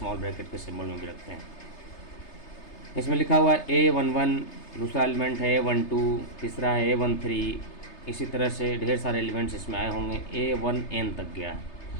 ब्रैकेट के सिम्बल में भी रखते हैं। इसमें लिखा हुआ है A11, दूसरा एलिमेंट है A12, तीसरा है A13। इसी तरह से ढेर सारे एलिमेंट्स इसमें आए होंगे, A1n तक गया है।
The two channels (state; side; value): late; right; 3.3 ms